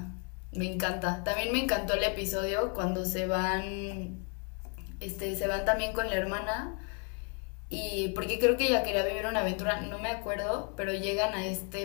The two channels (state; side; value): quieter; right; 38.5 dB